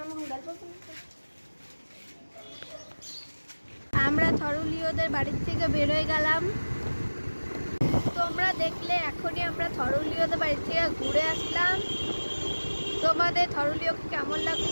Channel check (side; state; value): both; inverted; correlation -1.00